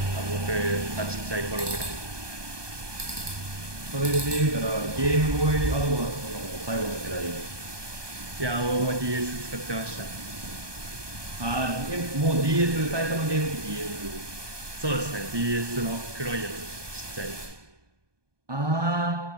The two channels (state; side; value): late; left; 1.2 ms